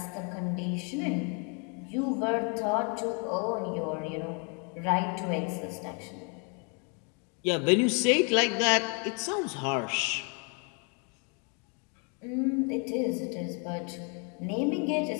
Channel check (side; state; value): right; quieter; 36.8 dB